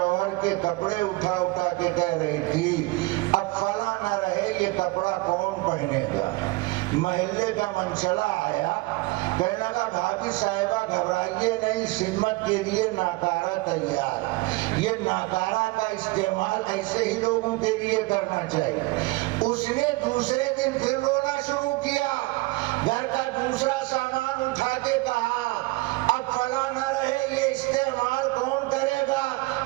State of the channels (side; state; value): left; quieter; 22.5 dB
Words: کے کپڑے اٹھا اٹھا کے کہہ رہی تھی اب فلاں نہ رہے یہ کپڑا کون پہنے گا۔ محلے کا منچلا آیا، کہنے لگا بھابی صاحبہ گھبرائیے نہیں، خدمت کے لیے ناکارہ تیار، یہ ناکارہ کا استعمال ایسے ہی لوگوں کے لیے کرنا چاہیے۔ اس نے دوسرے دن پھر رونا شروع کیا، گھر کا دوسرا سامان اٹھا کے کہا اب فلاں نہ رہے یہ استعمال کون کرے گا۔